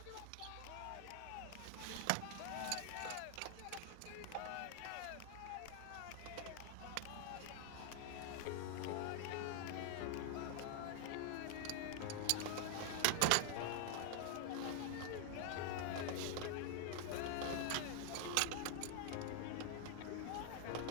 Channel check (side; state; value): both; different; correlation 0.00